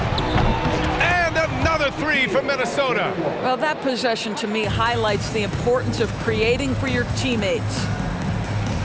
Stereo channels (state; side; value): identical; both; correlation 1.00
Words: And another 3 from Minnesota. Well, that possession to me highlights the importance of creating for your teammates.